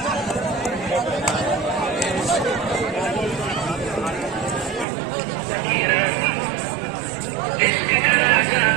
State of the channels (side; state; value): left; drops out; at 4.9 s